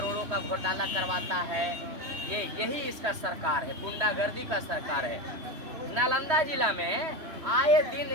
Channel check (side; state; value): left; late; 3.1 ms